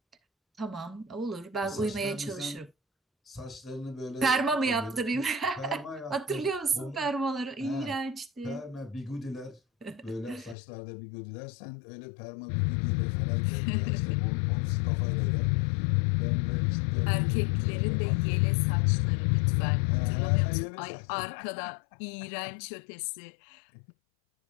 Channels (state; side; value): drops out; right; at 10.6 s